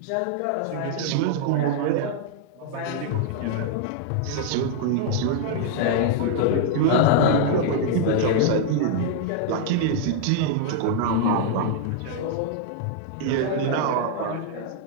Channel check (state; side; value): different; both; correlation -0.01